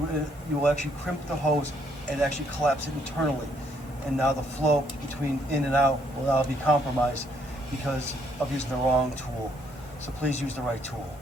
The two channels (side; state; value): both; normal; correlation 0.70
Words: will actually crimp the hose and actually collapse it internally. And now the flow between in and out will now be compromised because of using the wrong tool. So please use the right tool.